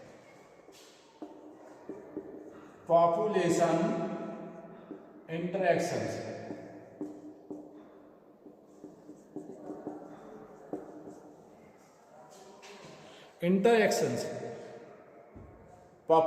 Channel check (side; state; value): both; identical; correlation 1.00